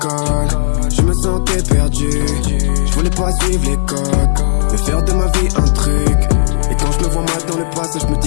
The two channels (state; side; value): silent; right; digital silence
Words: je me sentais perdu. Je voulais pas suivre les codes, mais faire de ma vie un truc. Et quand je me vois mal dans le passé, je me